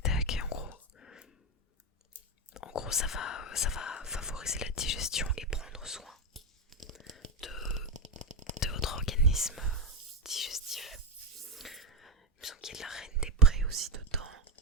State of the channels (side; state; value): both; normal; correlation 0.13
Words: tac. Et en gros ça va favoriser la digestion et prendre soin de votre organisme digestif. Il me semble qu'il y a de la reine des prés aussi dedans